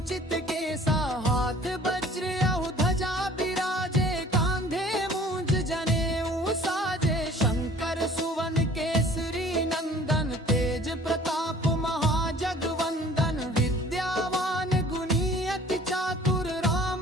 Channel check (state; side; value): normal; both; correlation 0.51